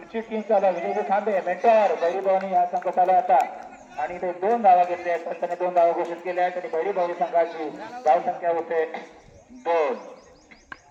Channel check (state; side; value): identical; both; correlation 1.00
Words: टीम चालू विजय खांबे मेंटर बैरी भवानी या संघ चालू आता आणि ते 2 धावा घेतले आहेत. त्यांनी 2 धावा घोषित केल्या आहेत आणि बैरी भवानी संघाची धाव संख्या होते 2.